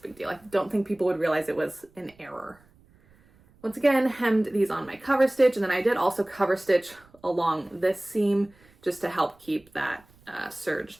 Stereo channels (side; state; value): right; noise; rumble, 30 dB below the sound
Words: big deal. I don't think people would realize it was an error. Once again, hemmed these on my cover stitch, and then I did also cover stitch along this seam just to help keep that